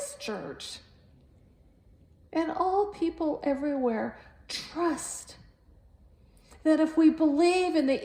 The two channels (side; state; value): both; identical; correlation 1.00